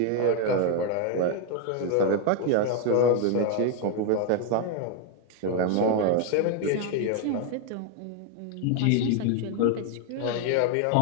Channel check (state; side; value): different; both; correlation 0.01